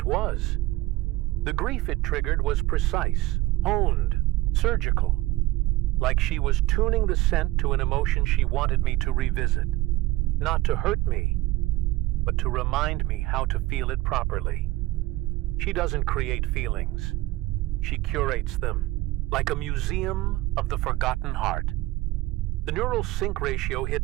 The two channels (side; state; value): left; quieter; 18.5 dB